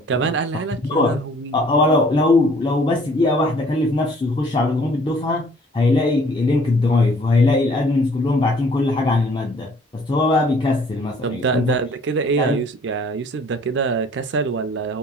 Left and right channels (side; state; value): both; normal; correlation 0.56